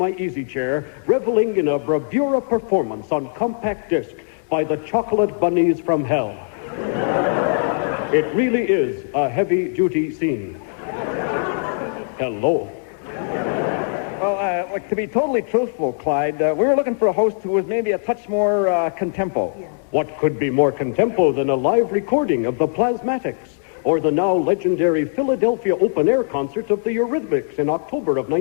easy chair, reveling in a bravura performance on compact disc by the Chocolate Bunnies from Hell. It really is a heavy-duty scene. Hello. Well, to be totally truthful, Clyde, we were looking for a host who was maybe a touch more contempo. Yeah. What could be more contempo than a live recording of the Plasmatics or the now legendary Philadelphia open-air concert of the Eurythmics in October of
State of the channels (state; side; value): silent; right; 65 dB below the other